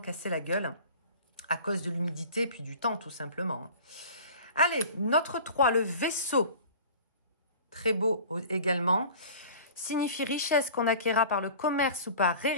la gueule à cause de l'humidité et puis du temps, tout simplement. Allez, notre 3, le vaisseau. Très beau également. Signifie richesse qu'on acquérera par le commerce ou par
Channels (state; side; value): inverted; both; correlation -0.42